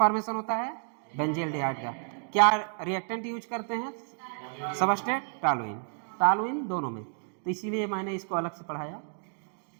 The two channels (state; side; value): silent; left; 58 dB below the other